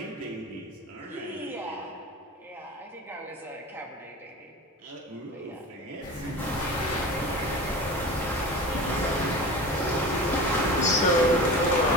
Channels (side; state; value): both; normal; correlation 0.33